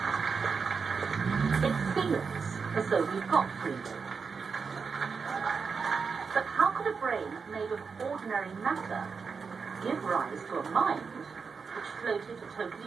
It seems as though we've got free will. But how could a brain made of very matter give rise to a mind which floated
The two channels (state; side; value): quieter; left; 5.4 dB